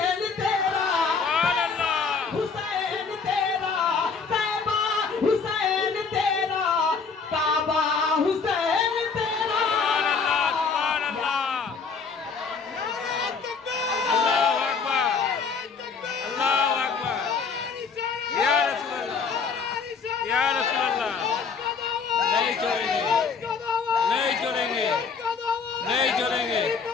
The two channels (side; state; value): right; quieter; 5.3 dB